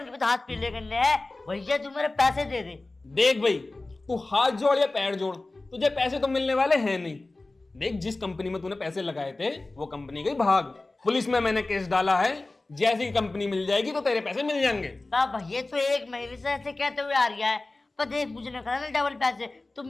हाथ पीले करने हैं। भैया तू मेरे पैसे दे दे। देख भाई, तू हाथ जोड़ या पैर जोड़, तुझे पैसे तो मिलने वाले हैं नहीं। देख, जिस कंपनी में तूने पैसे लगाए थे वो कंपनी गई भाग, पुलिस में मैंने केस डाला है। जैसी कंपनी मिल जाएगी तो तेरे पैसे मिल जाएंगे। भैया तो 1 महीने से ऐसे कहते हुए आ रहा है, पर देख मुझे ना करना डबल पैसे, तू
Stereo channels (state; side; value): quieter; right; 3.1 dB